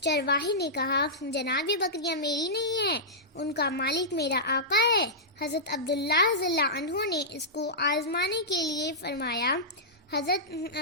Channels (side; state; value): both; normal; correlation -0.13